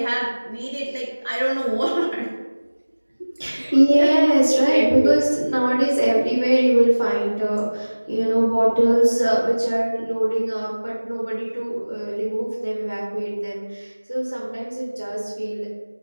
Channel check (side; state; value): both; inverted; correlation -1.00